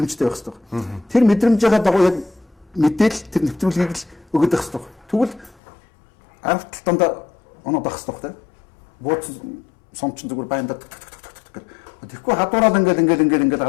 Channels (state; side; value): drops out; right; at 5.6 s